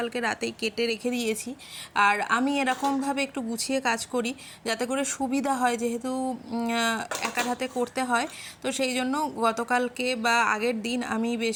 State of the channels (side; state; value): both; identical; correlation 1.00